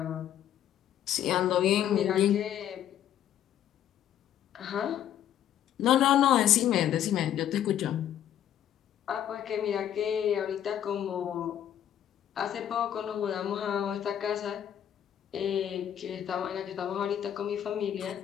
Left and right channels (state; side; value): quieter; right; 10.5 dB